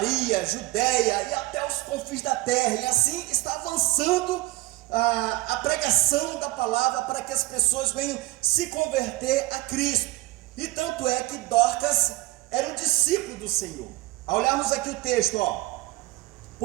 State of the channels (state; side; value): quieter; left; 18.8 dB